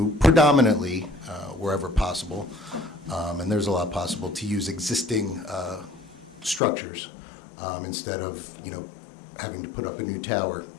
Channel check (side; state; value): right; drops out; at 6.6 s